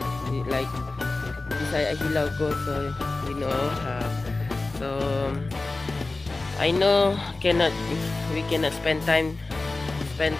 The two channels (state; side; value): quieter; right; 3.3 dB